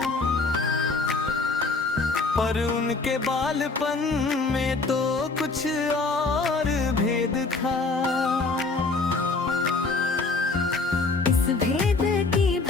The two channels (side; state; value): right; quieter; 3.8 dB